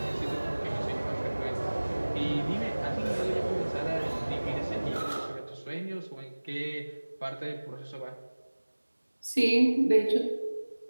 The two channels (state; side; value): inverted; both; correlation -1.00